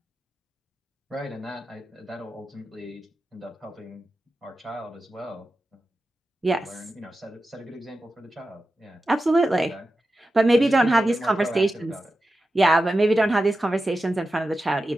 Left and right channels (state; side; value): normal; both; correlation 0.92